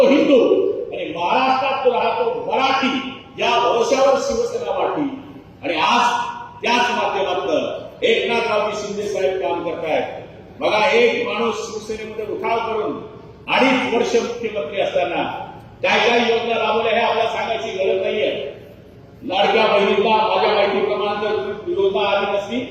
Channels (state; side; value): identical; both; correlation 1.00